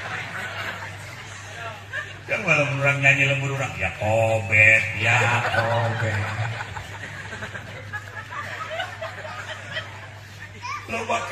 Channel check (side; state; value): both; identical; correlation 1.00